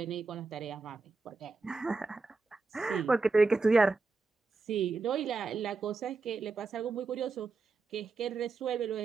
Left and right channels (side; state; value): left; quieter; 4.0 dB